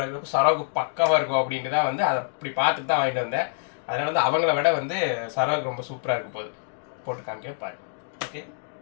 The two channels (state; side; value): silent; right; digital silence